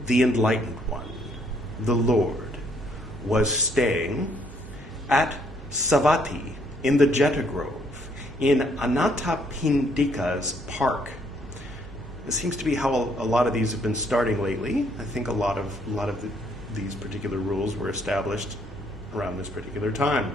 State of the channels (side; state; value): both; normal; correlation 0.68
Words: the enlightened one, the Lord, was staying at Savatthi in the Jeta Grove, in Anathapindika's park. It seems to be how a lot of these have been starting lately. I think a lot of these particular rules were established around this particular time.